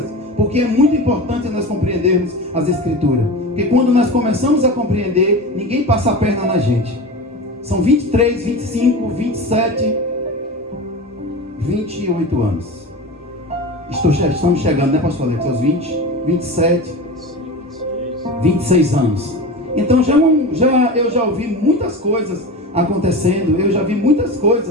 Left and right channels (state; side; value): normal; both; correlation 0.28